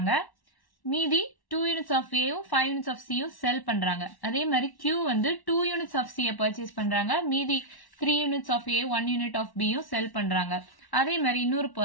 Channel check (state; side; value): late; right; 1.1 ms